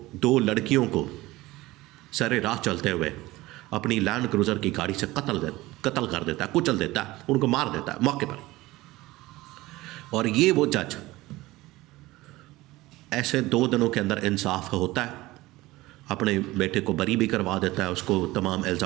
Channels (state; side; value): quieter; left; 19.0 dB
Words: 2 लड़कियों को सरे राह चलते हुए अपनी लैंड क्रूज़र की गाड़ी से कत्ल कर देता है, कुचल देता है, उनको मार देता है मौके पर। और ये वो जज ऐसे 2 दिनों के अंदर इंसाफ होता है, अपने बेटे को बरी भी करवा देता है, उसको तमाम